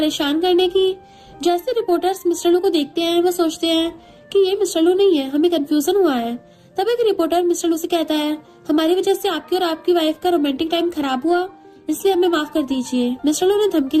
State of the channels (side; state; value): both; identical; correlation 1.00